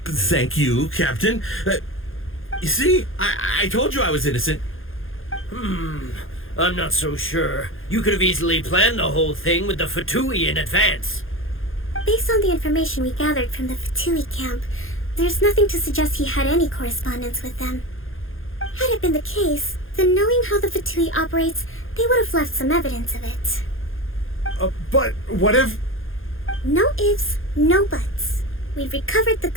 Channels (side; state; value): right; late; 0.59 ms